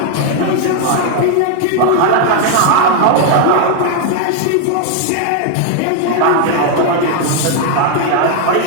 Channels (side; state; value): both; different; correlation 0.00